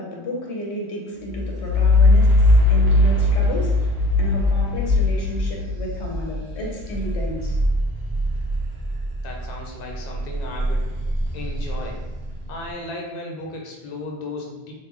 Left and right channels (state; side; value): normal; both; correlation 0.49